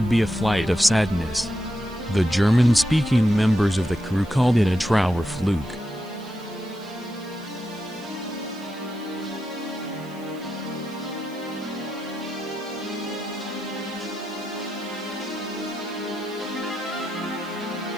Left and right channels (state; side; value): noise; right; hiss, 25 dB below the sound